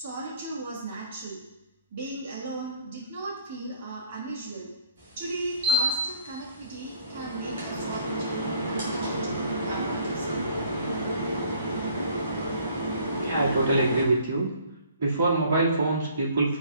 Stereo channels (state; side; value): inverted; both; correlation -0.58